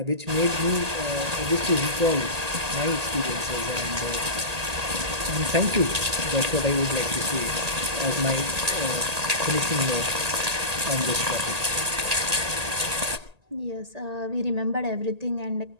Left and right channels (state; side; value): late; left; 1.8 ms